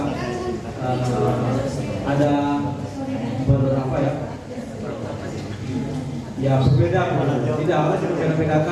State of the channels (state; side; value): identical; both; correlation 1.00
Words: ada beberapa ya berbeda, tidak harus